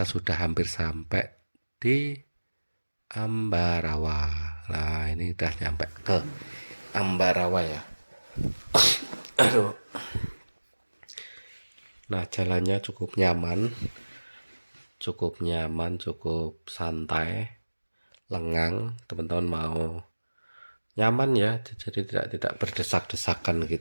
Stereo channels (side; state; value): both; inverted; correlation -1.00